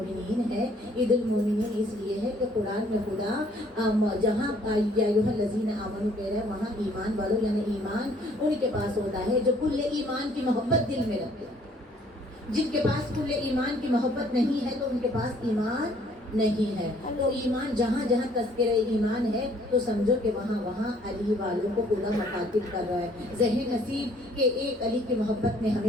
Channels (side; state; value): both; normal; correlation 0.61